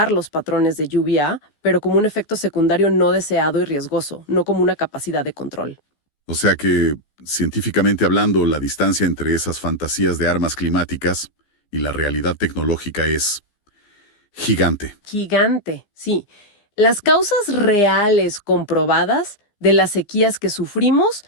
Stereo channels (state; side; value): late; right; 15 ms